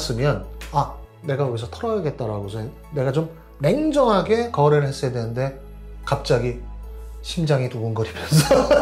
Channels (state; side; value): identical; both; correlation 1.00